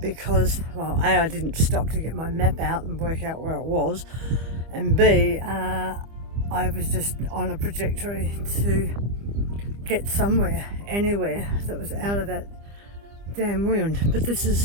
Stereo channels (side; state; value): left; late; 25 ms